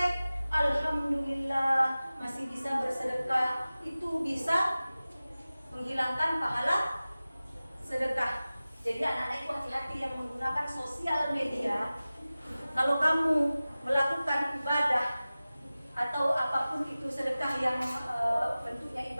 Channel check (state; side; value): inverted; both; correlation -0.97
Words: alhamdulillah masih bisa bersedekah. Itu bisa menghilangkan pahala sedekah. Jadi anak-anak itu hati-hati yang menggunakan sosial media. Kalau kamu melakukan ibadah atau apapun itu sedekah yang bentuknya